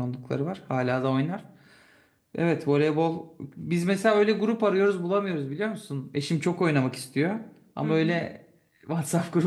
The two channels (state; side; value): identical; both; correlation 1.00